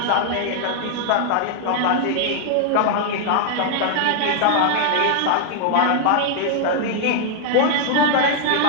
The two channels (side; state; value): both; different; correlation 0.00